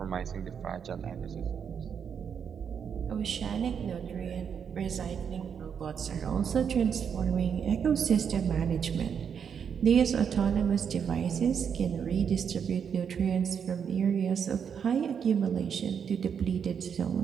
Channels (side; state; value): left; quieter; 7.3 dB